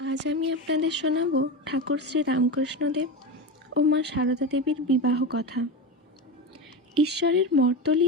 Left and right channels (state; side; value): normal; both; correlation 0.20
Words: আমি আপনাদের শোনাব ঠাকুর শ্রী রামকৃষ্ণদেব ও মা সারদা দেবীর বিবাহ কথা। ঈশ্বরের